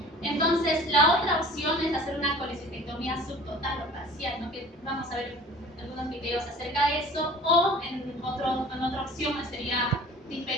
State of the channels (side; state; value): both; normal; correlation 0.45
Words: Entonces, la otra opción es hacer una colecistectomía subtotal o parcial, ¿no? Que vamos a ver algunos videos acerca de eso, o en otra opción sería